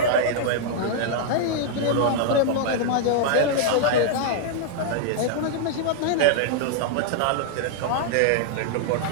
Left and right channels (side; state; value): both; different; correlation -0.01